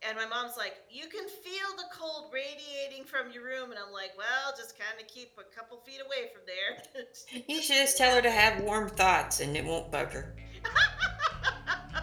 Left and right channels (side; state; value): both; identical; correlation 1.00